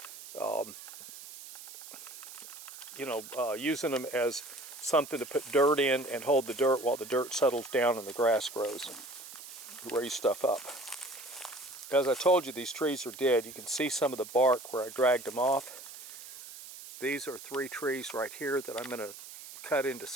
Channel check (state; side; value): noise; right; hiss, 14 dB below the sound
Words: using them as something to put dirt in and hold the dirt while the dirt settles down and the grass grows and raise stuff up. As I told you, these trees are dead. You can see some of the bark where I dragged them off. These are 3 trees right here that I'm going to cut into